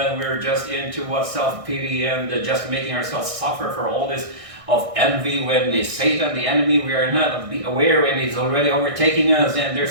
we're just into what self-pity and just making ourselves suffer for all this of envy when the Satan, the enemy, we are not aware when he's already overtaking us and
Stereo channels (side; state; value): left; late; 1.6 ms